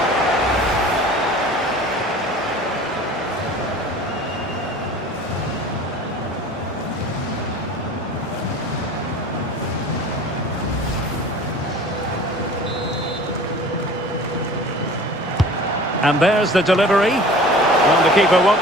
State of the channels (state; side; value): normal; both; correlation 0.43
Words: And there's the delivery. Well, the keeper